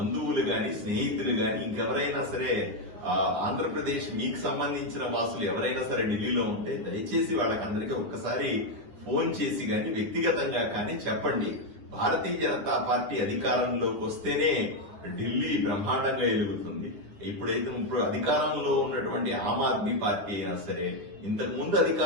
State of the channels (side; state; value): left; late; 9.7 ms